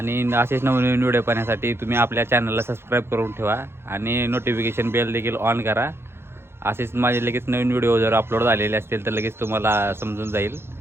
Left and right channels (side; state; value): left; late; 0.12 ms